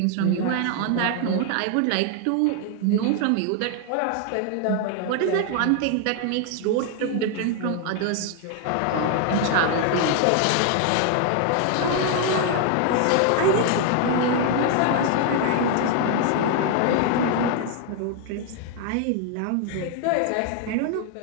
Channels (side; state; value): both; different; correlation 0.00